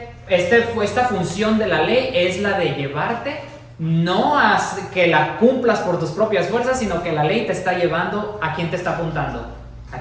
función de la ley es la de llevarte, no a que la cumplas por tus propias fuerzas, sino que la ley te está llevando, ¿a quién te está apuntando?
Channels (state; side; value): identical; both; correlation 1.00